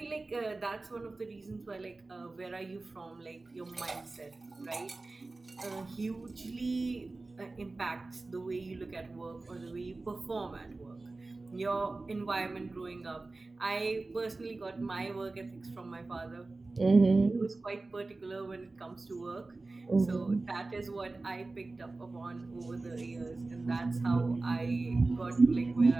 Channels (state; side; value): quieter; left; 3.3 dB